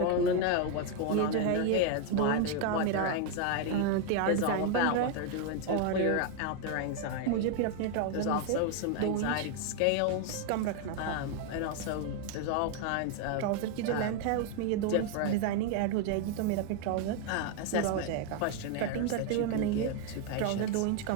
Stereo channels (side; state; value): both; different; correlation 0.01